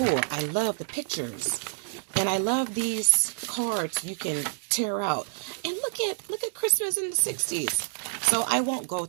I love the pictures. And I love these cards you can tear out. And look at Christmas in the 60s. So I won't go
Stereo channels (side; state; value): left; silent; digital silence